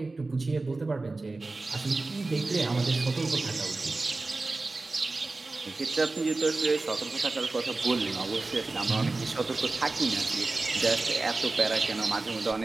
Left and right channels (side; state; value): left; quieter; 3.3 dB